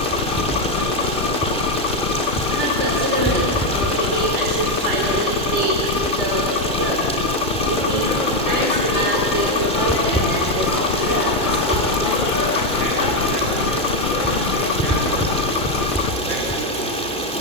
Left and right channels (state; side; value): normal; both; correlation 0.07